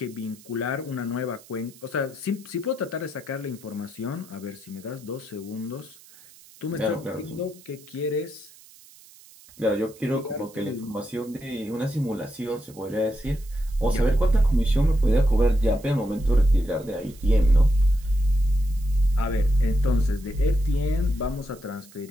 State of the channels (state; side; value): noise; right; hiss, 23 dB below the sound